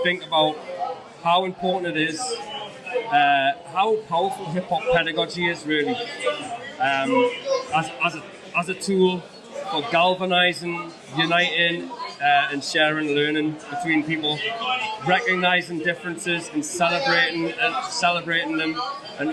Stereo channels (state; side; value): identical; both; correlation 1.00